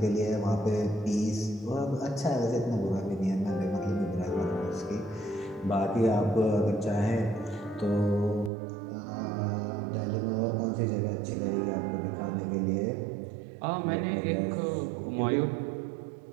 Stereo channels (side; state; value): left; drops out; at 8.5 s